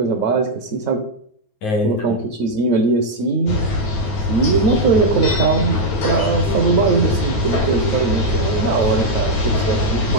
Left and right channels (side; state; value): right; late; 9.3 ms